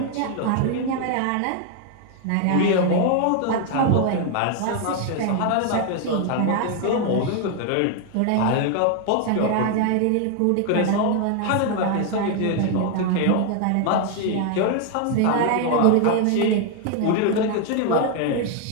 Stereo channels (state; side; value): different; both; correlation 0.00